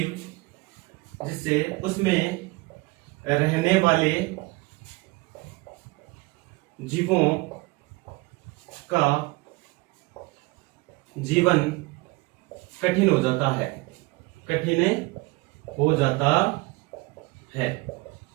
जिससे उसमें रहने वाले जीवों का जीवन कठिन हो जाता है, कठिन हो जाता है।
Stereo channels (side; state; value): left; quieter; 24.1 dB